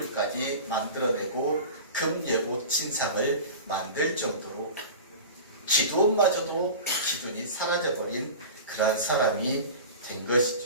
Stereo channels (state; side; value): inverted; both; correlation -0.34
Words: 만들어내고 금예봇 신상을 만들 정도로 기드온마저도 기준이 사라져버린 그러한 사람이 된